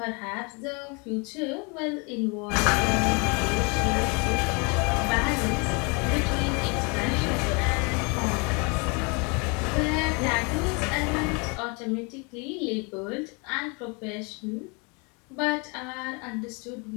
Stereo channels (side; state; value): right; quieter; 31.8 dB